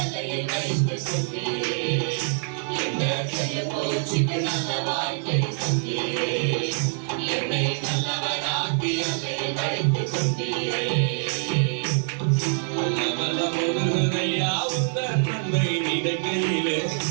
அலையில் வைத்துக் கொண்டீரே. இந்த செல்லுபூச்சிக்கு நல்ல வாழ்க்கை தந்தீரே, என்னை நல்லவனாக்கி அலையில் வைத்துக் கொண்டீரே. உள்ளமெல்லாம் உருகுதையா உந்தன் நன்மை நினைக்கையிலே,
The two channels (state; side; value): silent; left; 62 dB below the other